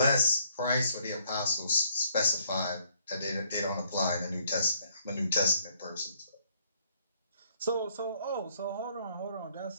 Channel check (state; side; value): inverted; both; correlation -0.68